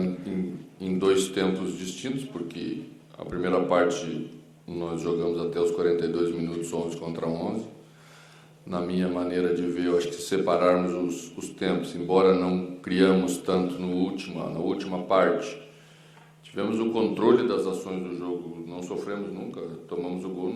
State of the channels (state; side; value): identical; both; correlation 1.00